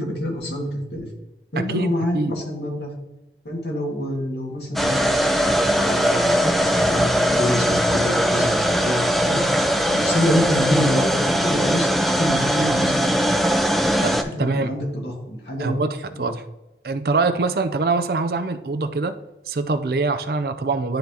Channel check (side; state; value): both; normal; correlation 0.74